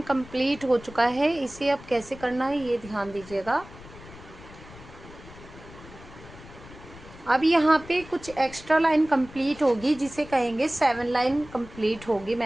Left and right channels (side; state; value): left; noise; rumble, 18 dB below the sound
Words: कंप्लीट हो चुका है। इसे अब कैसे करना है ये ध्यान दीजिएगा। अब यहाँ पे कुछ एक्स्ट्रा लाइन कंप्लीट होगी जिसे कहेंगे 7 लाइन कंप्लीट होगी